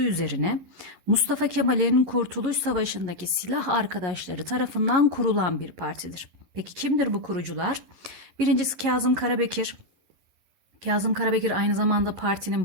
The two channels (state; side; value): late; left; 11 ms